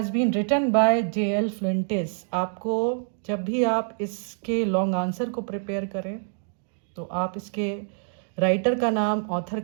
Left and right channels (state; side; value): silent; left; digital silence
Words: been written by J.L. Fuentes. आपको जब भी आप इसके लॉन्ग आंसर को प्रिपेयर करें तो आप इसके राइटर का नाम, ऑथर